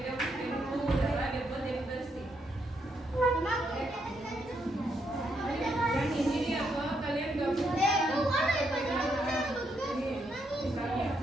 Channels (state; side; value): normal; both; correlation 0.78